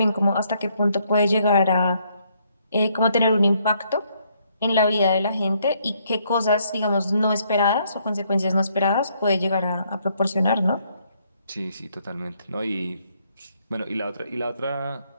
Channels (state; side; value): inverted; both; correlation -0.70